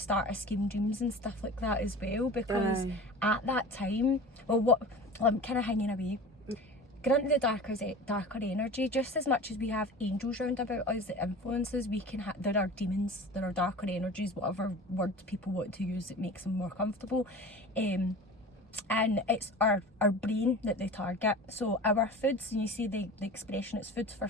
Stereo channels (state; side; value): normal; both; correlation 0.37